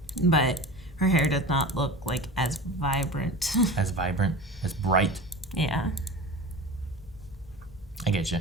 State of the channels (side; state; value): both; normal; correlation 0.33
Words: But her hair does not look, like, as vibrant. As vibrant, as bright. Yeah. I get you.